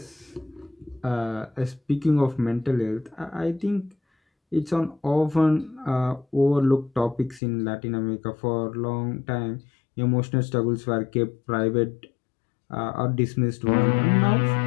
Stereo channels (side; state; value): right; drops out; at 7.4 s